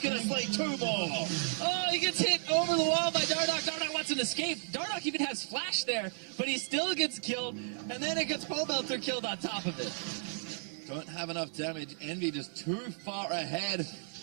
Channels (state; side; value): silent; left; digital silence